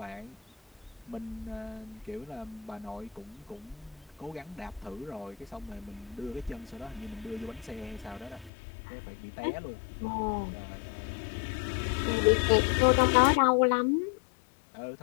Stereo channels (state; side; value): drops out; right; at 8.5 s